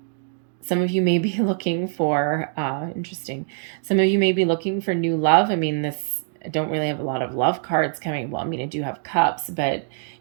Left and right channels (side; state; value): left; silent; digital silence